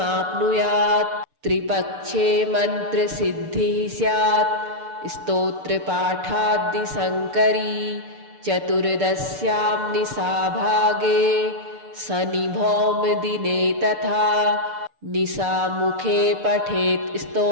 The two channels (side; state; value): left; late; 6.8 ms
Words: त्रिपक्षे मन्त्रसिद्धिः स्यात् स्तोत्रपाठाद्दिशङ्करी चतुर्दश्यां निशाभागे शनिभौमदिने तथा निशामुखे पठेत्